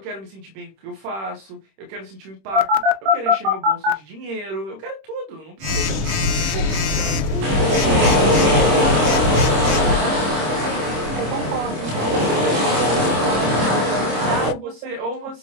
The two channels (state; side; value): late; left; 26 ms